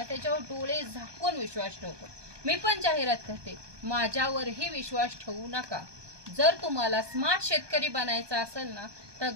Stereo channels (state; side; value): late; left; 1.2 ms